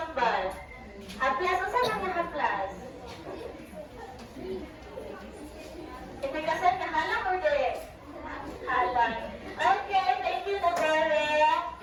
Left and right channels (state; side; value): identical; both; correlation 1.00